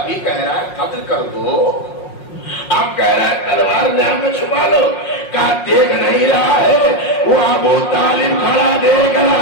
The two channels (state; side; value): late; right; 5.5 ms